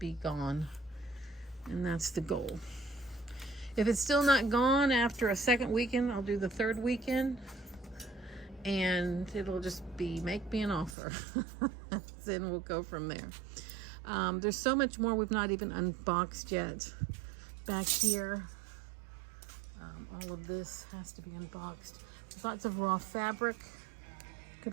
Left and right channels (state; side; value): drops out; left; at 11.0 s